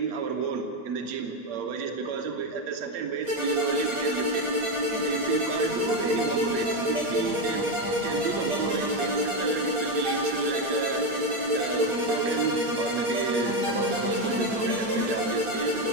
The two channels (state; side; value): late; left; 8.6 ms